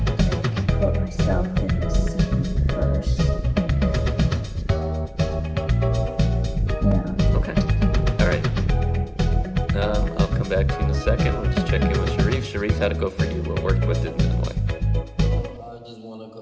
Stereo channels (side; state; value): both; identical; correlation 1.00